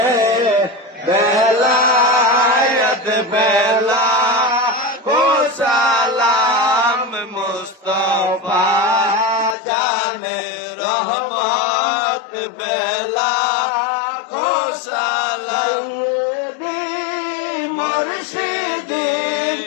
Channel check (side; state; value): right; drops out; at 9.6 s